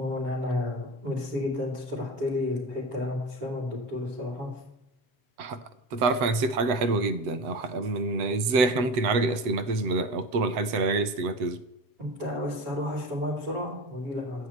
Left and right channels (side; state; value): left; late; 8.0 ms